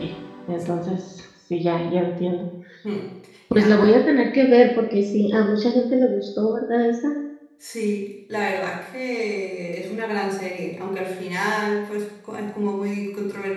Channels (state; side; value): identical; both; correlation 1.00